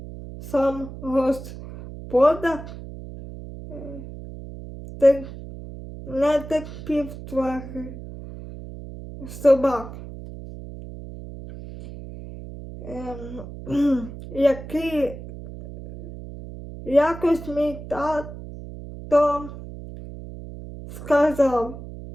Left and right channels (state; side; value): noise; right; hum, 12 dB below the sound